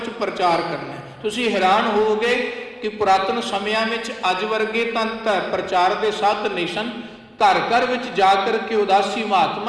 प्रचार करना है। तुसीं हैरान होवोगे कि पुरातन समयां विच अज वर्गे तां प्रचार के साधन नहीं सन। घर घर विच जा करके उदासी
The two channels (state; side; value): identical; both; correlation 1.00